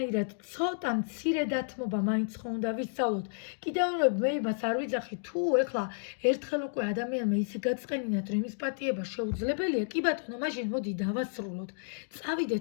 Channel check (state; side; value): silent; right; digital silence